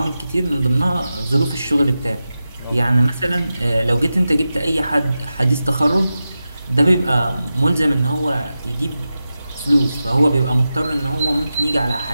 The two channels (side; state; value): both; inverted; correlation -0.92